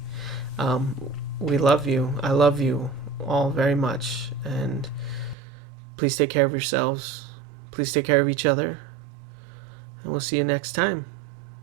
We love you. I love you all very much. And please take care of yourselves. Please take care of each other. And we'll see you next time.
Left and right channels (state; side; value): drops out; left; at 5.4 s